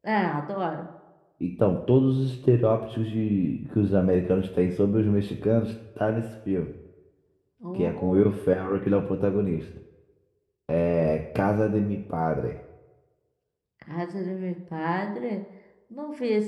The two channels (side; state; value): both; identical; correlation 1.00